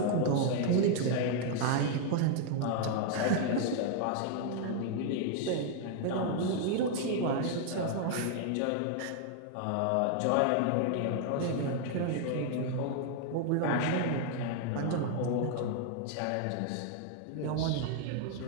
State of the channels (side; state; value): both; different; correlation 0.00